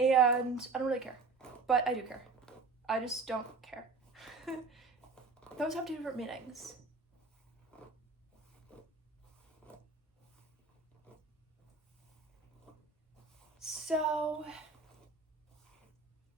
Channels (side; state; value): left; quieter; 4.3 dB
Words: I don't really care. But I do care. I just don't care. Those have two different meanings. So